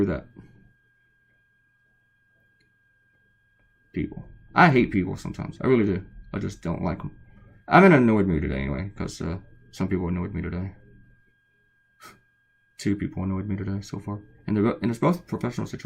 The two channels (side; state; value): both; identical; correlation 1.00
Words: that. People. I hate people sometimes. I really do. I just don't like them. I'm in an annoyed mood today anyway, because some people annoyed me today. 2 people annoyed me today so far. And it's both professional